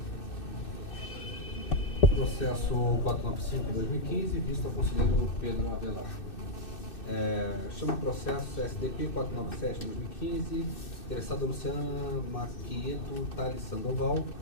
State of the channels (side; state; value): right; late; 2.6 ms